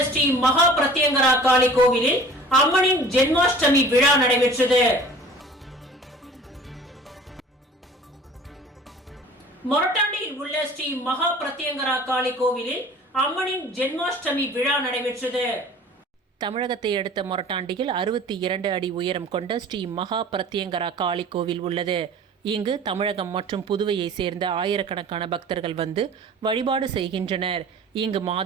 ஸ்ரீ மகா பிரத்யங்கரா காளி கோவிலில் அம்மனின் ஜென்மாஷ்டமி விழா நடைபெற்றது. மொரட்டாண்டியில் உள்ள ஸ்ரீ மகா பிரத்யங்கரா காளி கோவிலில் அம்மனின் ஜென்மாஷ்டமி விழா நடைபெற்றது. தமிழகத்தை அடுத்த மொரட்டாண்டியில் 62 அடி உயரம் கொண்ட ஸ்ரீ மகா பிரத்யங்கரா காளி கோவில் உள்ளது. இங்கு தமிழகம் மற்றும் புதுவையை சேர்ந்த ஆயிரக்கணக்கான பக்தர்கள் வந்து வழிபாடு செய்கின்றனர். இங்கு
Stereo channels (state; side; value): normal; both; correlation 0.45